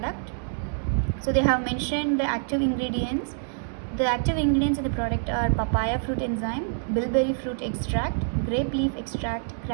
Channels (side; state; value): left; silent; digital silence